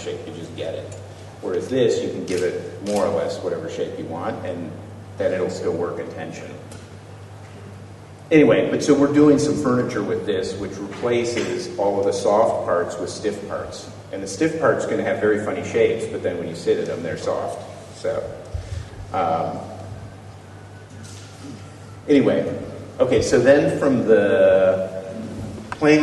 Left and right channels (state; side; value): identical; both; correlation 1.00